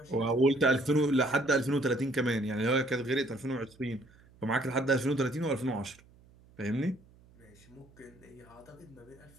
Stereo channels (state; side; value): noise; right; hum, 27 dB below the sound